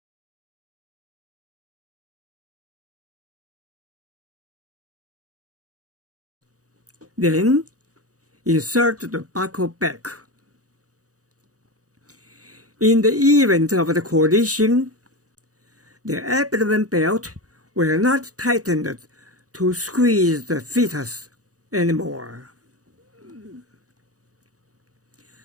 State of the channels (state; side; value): late; left; 0.66 ms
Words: Then insert the buckle back. In the event of the collision, the abdomen belt will not tighten to squeeze the fetus anymore.